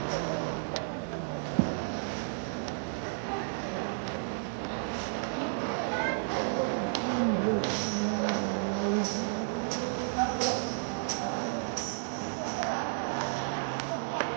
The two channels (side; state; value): left; silent; digital silence